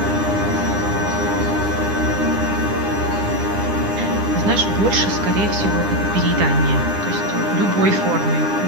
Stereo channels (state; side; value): late; left; 9.9 ms